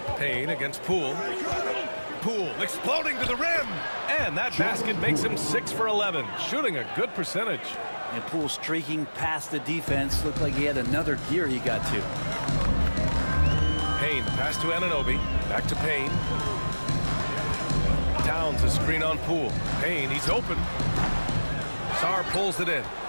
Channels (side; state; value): both; inverted; correlation -1.00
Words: Payne against Poole. Poole exploding to the rim. And that basket makes him 6 for 11, shooting a good percentage. And Poole streaking past the defense. Looked like he had another gear he got to. Payne, pass to Anunoby. Back to Payne. Towns a screen on Poole. Payne, he's open. Sarr pulls it in.